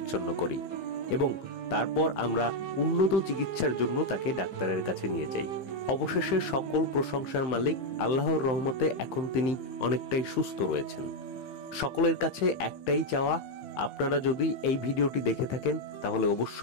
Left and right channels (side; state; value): right; late; 15 ms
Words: করি এবং তারপর আমরা উন্নত চিকিৎসার জন্য তাকে ডাক্তারের কাছে নিয়ে যাই। অবশেষে সকল প্রশংসার মালিক আল্লাহর রহমতে এখন তিনি অনেকটাই সুস্থ রয়েছেন। সকলের কাছে একটাই চাওয়া, আপনারা যদি এই ভিডিওটি দেখে থাকেন তাহলে